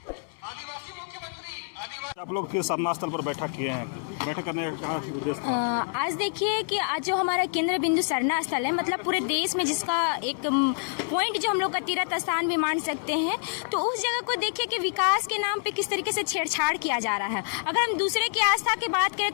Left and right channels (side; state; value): right; silent; 60 dB below the other